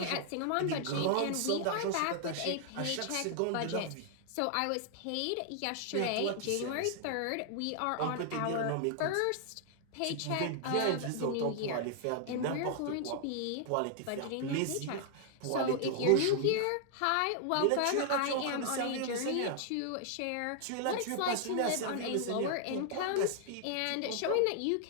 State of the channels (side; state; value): both; different; correlation 0.00